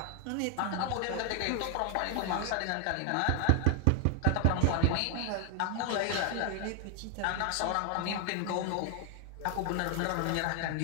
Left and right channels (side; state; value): both; different; correlation 0.00